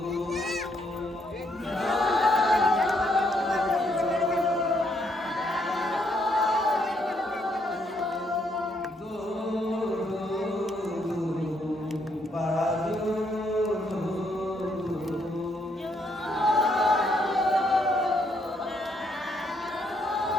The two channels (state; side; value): normal; both; correlation 0.73